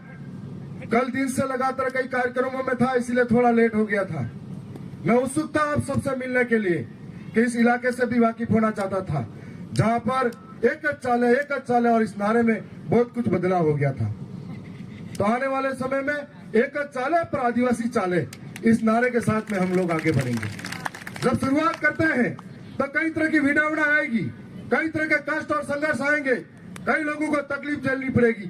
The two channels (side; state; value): both; identical; correlation 1.00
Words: कल दिन से लगातार कई कार्यक्रमों में था, इसलिए थोड़ा लेट हो गया था। मैं उत्सुक था आप सबसे मिलने के लिए कि इस इलाके से भी वाकिफ होना चाहता था, जहां पर एक चाले और इस नारे में बहुत कुछ बदलाव हो गया था। तो आने वाले समय में एक चाले पर आदिवासी चाले, इस नारे के साथ में हम लोग आगे बढ़ेंगे। जब शुरुआत करते हैं तो कई तरह की विडंबना आएगी, कई तरह के कष्ट और संघर्ष आएंगे, कई लोगों को तकलीफ झेलनी पड़ेगी